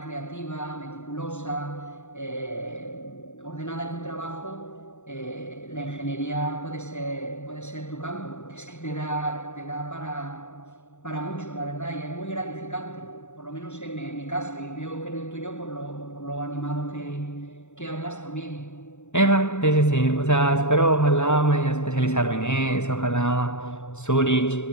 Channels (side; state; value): right; late; 0.83 ms